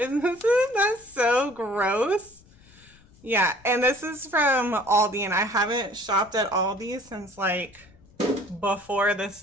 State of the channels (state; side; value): noise; left; rumble, 27 dB below the sound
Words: that so gross? Yeah, and this is from Aldi, and I haven't shopped at Aldi since, like, before the